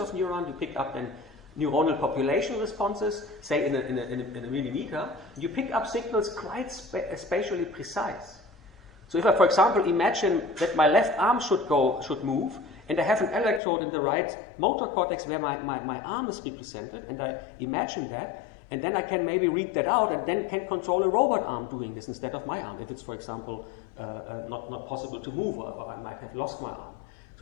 neurons, you pick up then neuronal population responses, say in a millimeter, you pick up signals quite spatially precise. So if I, for example, imagine that my left arm should move, and I have an electrode in the right motor cortex where my arm is represented, and I imagine that, and then I can maybe read that out, and then can control a robot arm doing this instead of my arm, if it's, for example, not possible to move, or I might have lost my arm.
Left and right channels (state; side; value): drops out; right; at 13.6 s